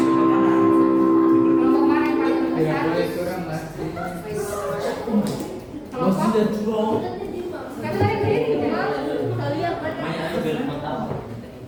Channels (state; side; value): identical; both; correlation 1.00